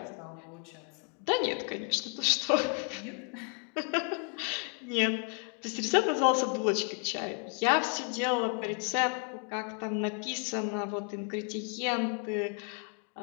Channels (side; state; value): right; quieter; 36.6 dB